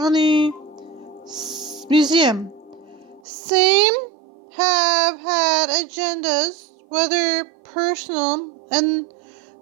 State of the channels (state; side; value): drops out; left; at 3.2 s